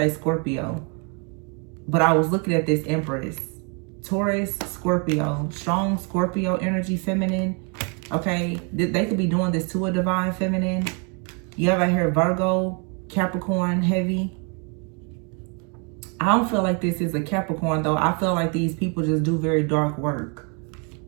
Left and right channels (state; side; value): quieter; left; 36.2 dB